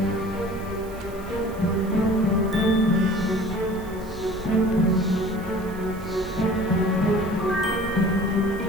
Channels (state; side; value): noise; right; hiss, 23 dB below the sound